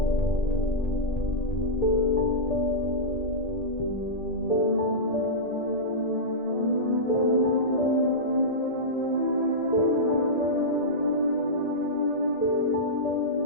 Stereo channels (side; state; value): right; late; 1.8 ms